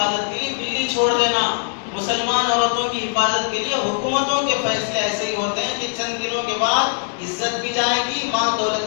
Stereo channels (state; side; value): silent; right; digital silence